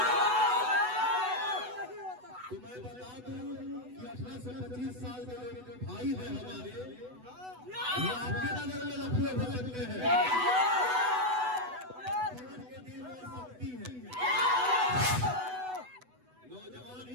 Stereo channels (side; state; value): left; late; 8.0 ms